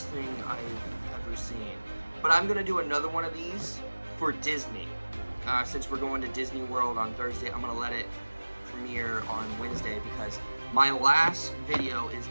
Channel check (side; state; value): both; inverted; correlation -1.00